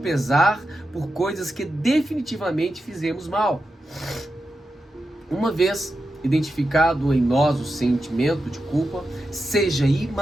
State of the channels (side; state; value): both; normal; correlation 0.89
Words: por coisas que definitivamente fizemos mal. Uma vez identificado em nós o sentimento de culpa, seja